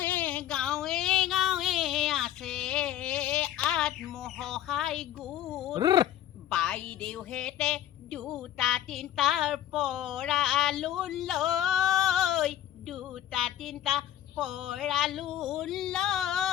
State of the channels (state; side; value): quieter; right; 12.0 dB